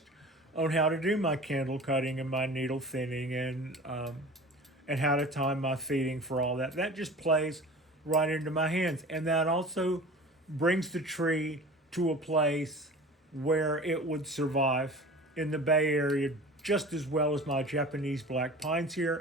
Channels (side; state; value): both; normal; correlation 0.39